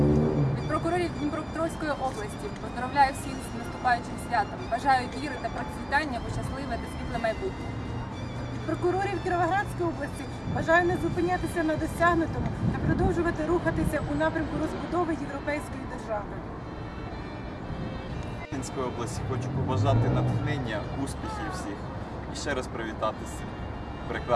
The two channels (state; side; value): identical; both; correlation 1.00